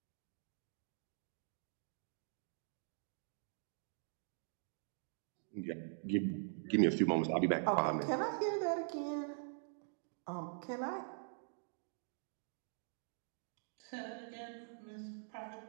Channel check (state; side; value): silent; left; digital silence